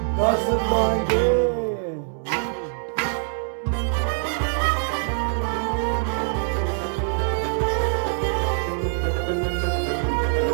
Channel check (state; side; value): silent; left; digital silence